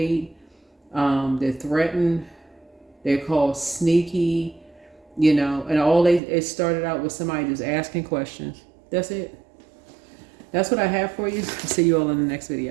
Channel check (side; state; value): left; drops out; at 6.2 s